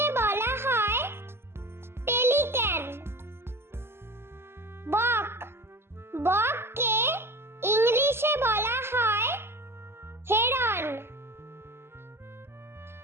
বলা হয় পেলিক্যান। বক, বককে ইংলিশে বলা হয় হেরন।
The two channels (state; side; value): late; left; 0.12 ms